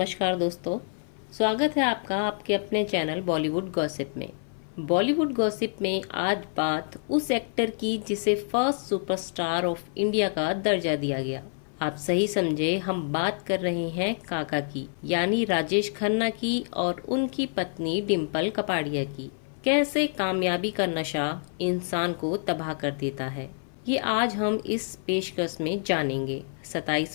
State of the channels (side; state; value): right; silent; 56 dB below the other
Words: दोस्तों, स्वागत है आपका आपके अपने चैनल बॉलीवुड गॉसिप में। बॉलीवुड गॉसिप में आज बात उस एक्टर की जिसे फर्स्ट सुपरस्टार ऑफ इंडिया का दर्जा दिया गया। आप सही समझे, हम बात कर रहे हैं काका की, यानी राजेश खन्ना की और उनकी पत्नी डिम्पल कपाड़िया की। कैसे कामयाबी का नशा इंसान को तबाह कर देता है, ये आज हम इस पेशकश में जानेंगे।